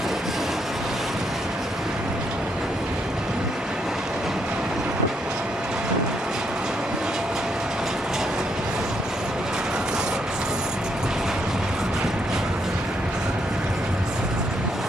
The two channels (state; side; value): normal; both; correlation 0.75